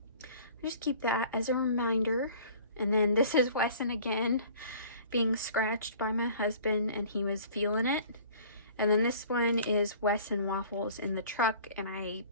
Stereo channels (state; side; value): inverted; both; correlation -0.49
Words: just keep that as a reminder. And then this is Wesson again, being scratched by my husband, and he was feeling it. And then this one is Wesson waffles in the truck, and I